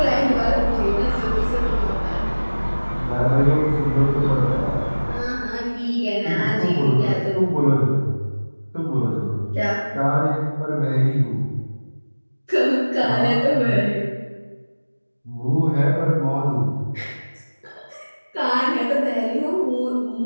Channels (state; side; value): inverted; both; correlation -1.00